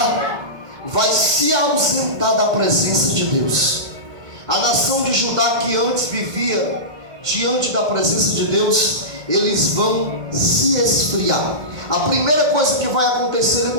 vai se ausentar da presença de Deus. A nação de Judá, que antes vivia diante da presença de Deus, eles vão se esfriar. A primeira coisa que vai acontecer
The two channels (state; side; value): late; left; 2.1 ms